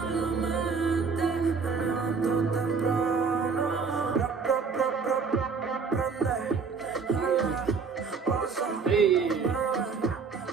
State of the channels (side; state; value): left; quieter; 5.3 dB